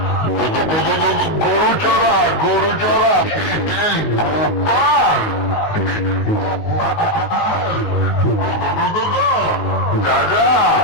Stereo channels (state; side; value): late; right; 19 ms